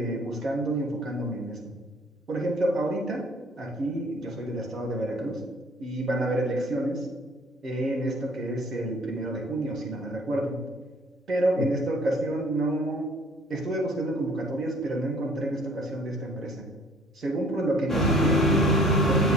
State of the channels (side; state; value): both; normal; correlation 0.55